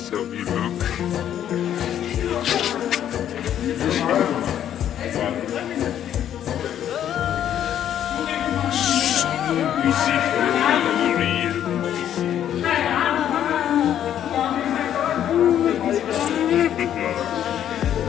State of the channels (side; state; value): right; quieter; 10.4 dB